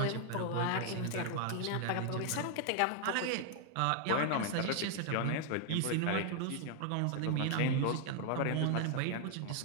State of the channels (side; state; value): both; different; correlation 0.00